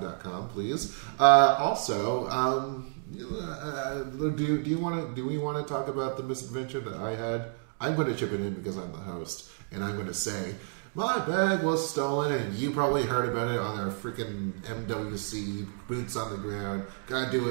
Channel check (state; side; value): silent; left; 58 dB below the other